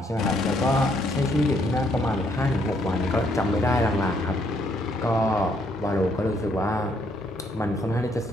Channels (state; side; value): normal; both; correlation 0.70